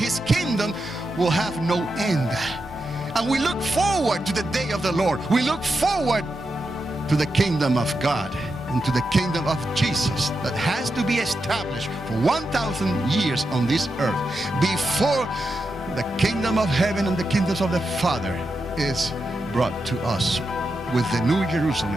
kingdom will have no end. And we look forward to the day of the Lord. We look forward to the kingdom of God and to the kingdom of Jesus that has to be established for 1,000 years on this earth before the kingdom of heaven and the kingdoms of the Father is brought to us with the new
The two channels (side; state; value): both; normal; correlation 0.87